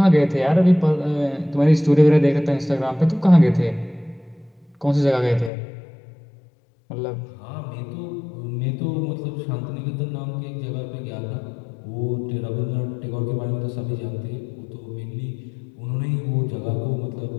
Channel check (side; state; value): right; drops out; at 5.5 s